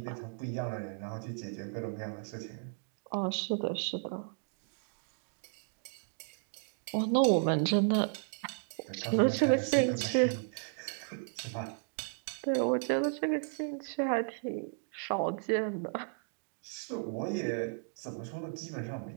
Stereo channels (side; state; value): left; silent; digital silence